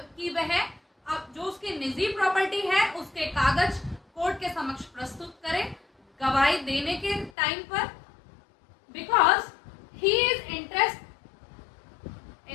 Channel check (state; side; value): drops out; right; at 7.3 s